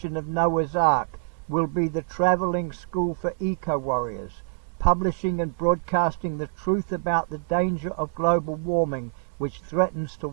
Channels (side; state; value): left; silent; 61 dB below the other